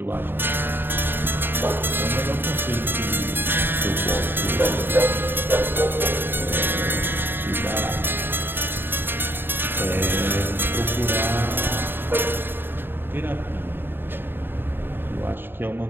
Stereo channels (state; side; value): late; left; 0.099 ms